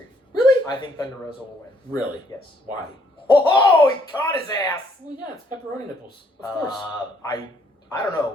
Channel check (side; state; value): both; normal; correlation 0.67